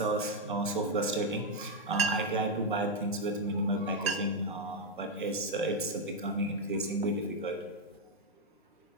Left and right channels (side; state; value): both; normal; correlation 0.03